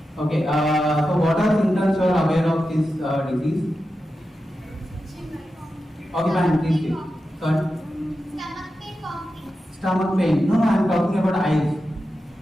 Okay, so what are symptoms you are aware of this disease? Okay, fine, please speak. Sorry? Stomach pain, vomiting. Stomach pain. No, I am talking about eyes.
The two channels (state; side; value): normal; both; correlation 0.91